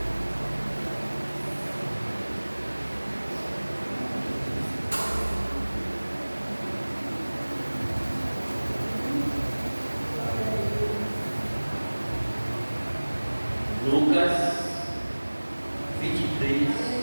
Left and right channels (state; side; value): inverted; both; correlation -1.00